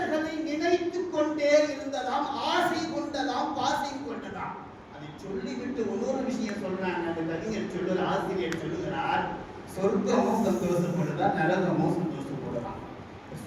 நினைத்துக் கொண்டே இருந்ததாம், ஆசை கொண்டதாம், பாசை கொண்டதாம். அதை சொல்லிவிட்டு இன்னொரு விஷயம் சொல்றாங்க. அந்த கவிஞர் சொல்லுற ஆசிரியர் சொல்லுகிறார், சொர்க்கமும் சந்தோஷப்படுதா, நரகமும் சந்தோஷப்படுதான்.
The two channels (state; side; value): identical; both; correlation 1.00